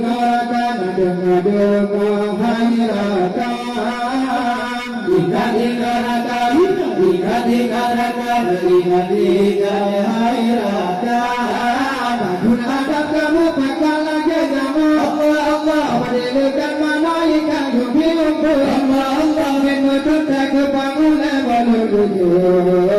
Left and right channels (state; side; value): identical; both; correlation 1.00